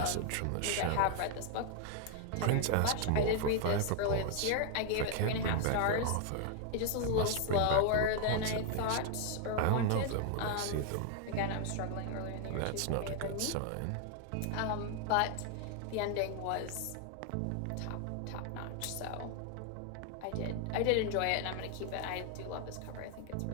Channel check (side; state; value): both; different; correlation 0.00